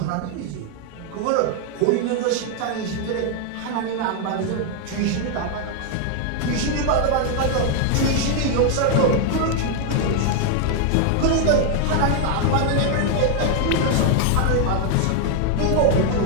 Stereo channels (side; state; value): both; different; correlation 0.00